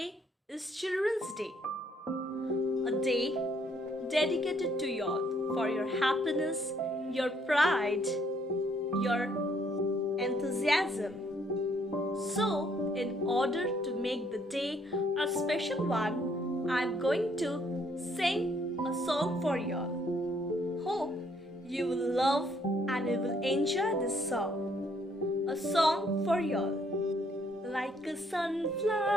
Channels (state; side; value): normal; both; correlation 0.67